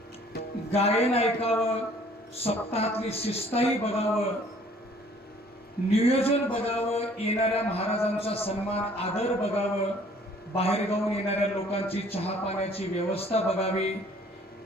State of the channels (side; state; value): both; normal; correlation 0.56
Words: गायन ऐकावं, सप्ताहातली शिस्ताही बघावं, नियोजन बघावं, येणाऱ्या महाराजांचा सन्मान आदर बघावं, बाहेर गावून येणाऱ्या लोकांची चहा पाण्याची व्यवस्था बघावी,